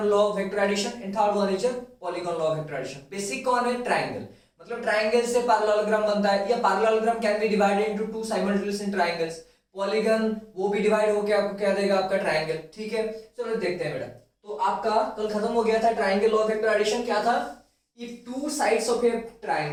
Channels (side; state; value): both; identical; correlation 1.00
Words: law of vector addition, and third one is polygon law of vector addition. Basic कौन है? ट्रायंगल, मतलब ट्रायंगल से पैरेललोग्राम बनता है, या parallelogram can be divided into two simultaneous triangles. Polygon वो भी डिवाइड होकर आपको क्या देगा, आपका ट्रायंगल, ठीक है। चलो देखते हैं बेटा। तो आपका कल खत्म हो गया था triangle law of vector addition. क्या था? if two sides of a